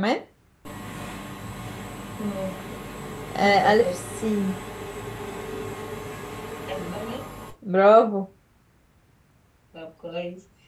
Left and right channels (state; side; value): identical; both; correlation 1.00